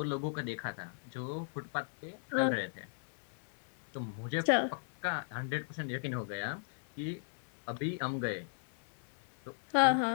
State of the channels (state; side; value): silent; right; 53 dB below the other